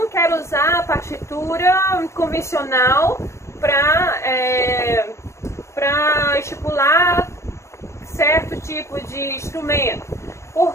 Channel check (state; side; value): late; right; 0.14 ms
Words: quero usar a partitura convencional para estipular certo tipo de instrumento,